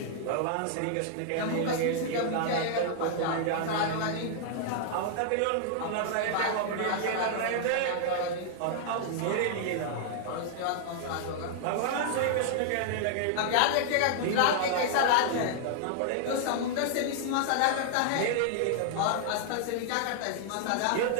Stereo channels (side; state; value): both; different; correlation -0.01